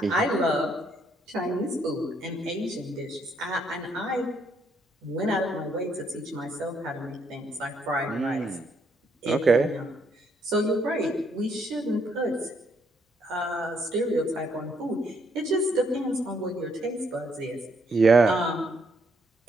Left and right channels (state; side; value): normal; both; correlation 0.72